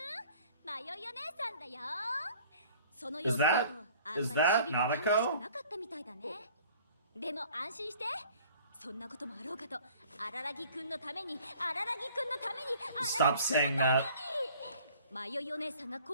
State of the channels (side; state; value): both; inverted; correlation -0.52